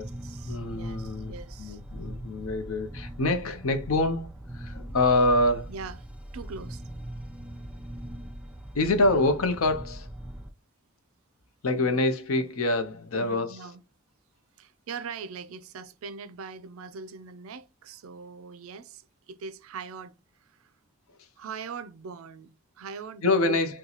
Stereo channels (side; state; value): both; normal; correlation -0.18